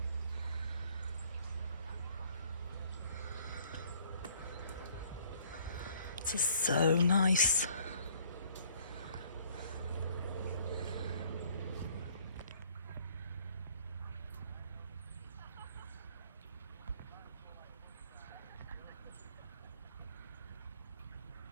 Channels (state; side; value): inverted; both; correlation -0.59